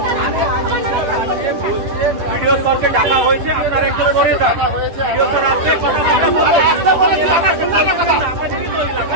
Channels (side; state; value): left; late; 10 ms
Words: ভিডিও স্যারকে ডাকা হয়েছে, আপনারা একটু সরে যান। ভিডিও স্যার আসবে, কথা বলবে।